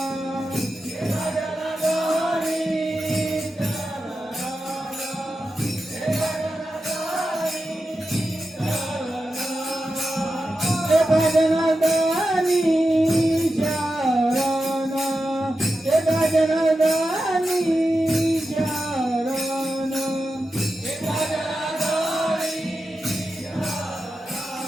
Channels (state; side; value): normal; both; correlation 0.91